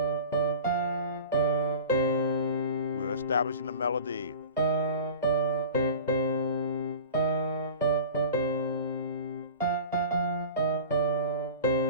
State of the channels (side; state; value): both; inverted; correlation -0.37